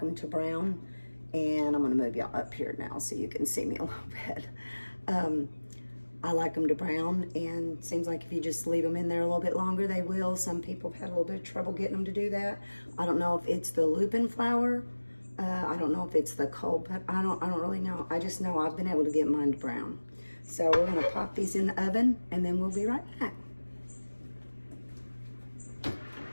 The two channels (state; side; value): inverted; both; correlation -1.00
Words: them to brown. And I'm going to move y'all up here now so you can see me a little bit. I like them to brown, and it seems like if you just leave them in there a little bit longer, they will. Some people have had a little bit of trouble getting them to do that. I don't know if it's the lupin flour. I don't know if it's the cold, but I don't really know. I just know I've been able to get mine to brown. So we're going to pop these in the oven, and then we'll be right back.